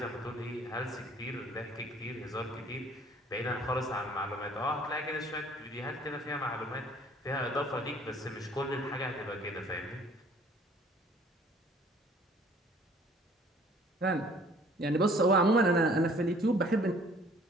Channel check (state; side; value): normal; both; correlation 0.55